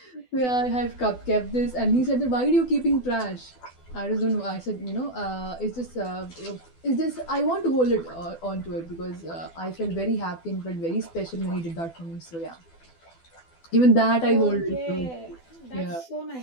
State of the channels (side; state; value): right; late; 12 ms